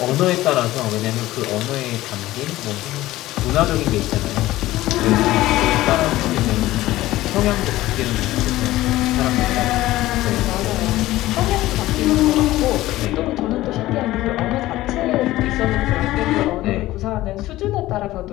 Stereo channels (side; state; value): right; quieter; 16.5 dB